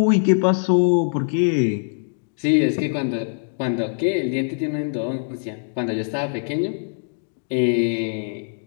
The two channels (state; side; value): silent; right; digital silence